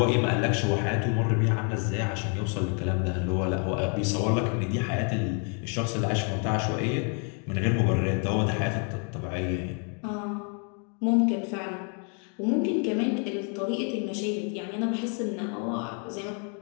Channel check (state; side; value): quieter; right; 39.9 dB